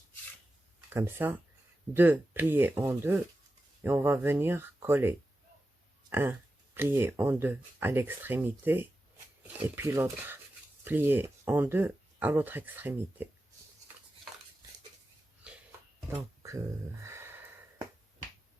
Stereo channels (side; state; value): both; normal; correlation 0.92